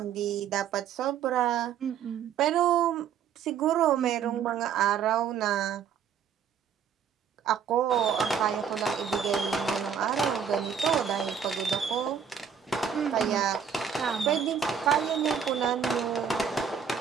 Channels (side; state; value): left; quieter; 7.6 dB